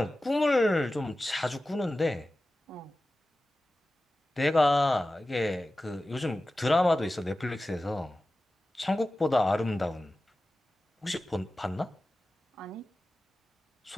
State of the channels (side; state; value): both; normal; correlation 0.95